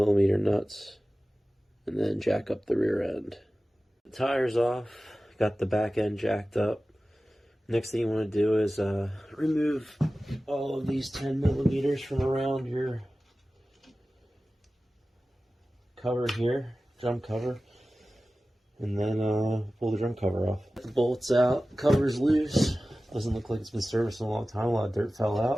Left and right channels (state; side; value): normal; both; correlation 0.96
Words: nuts, and then jack up the rear end. The tire's off, got the back end jacked up. Next thing you want to do is remove all of these 10mm from around your cover here, drum cover. And then pull the drum cover off. The bolts out, cover's loose. Doesn't look like it's been serviced in a long time. A lot of dirt fell